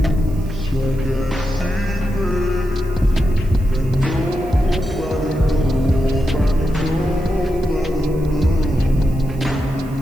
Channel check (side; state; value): right; noise; hiss, 25 dB below the sound